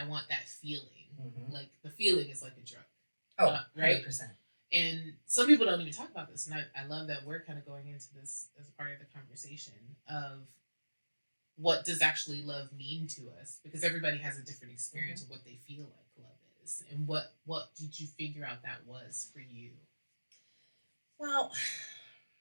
want that feeling. Like the feeling is like a drug. Oh, right. 100%. And some people don't even talk about this, and I love that we're kind of going into this as a part of the conversation of what does actually love mean to us, because everybody has a different experience of what they feel like love is, and what did you figure out that was for you? Well,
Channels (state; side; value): inverted; both; correlation -1.00